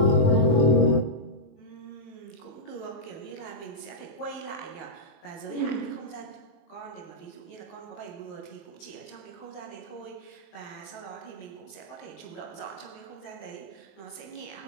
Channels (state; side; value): late; right; 21 ms